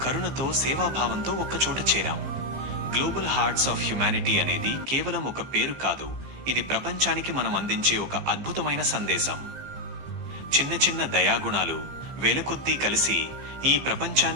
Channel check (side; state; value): left; late; 15 ms